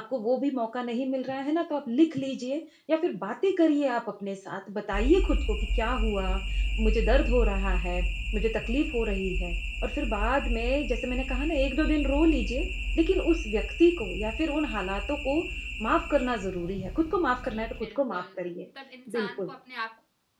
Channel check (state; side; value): identical; both; correlation 1.00